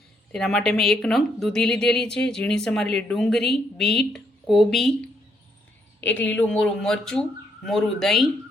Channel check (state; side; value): normal; both; correlation 0.74